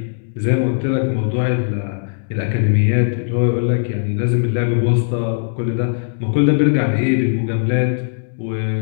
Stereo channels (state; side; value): silent; right; 67 dB below the other